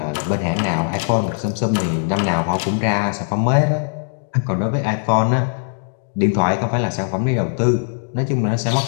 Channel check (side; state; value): right; silent; digital silence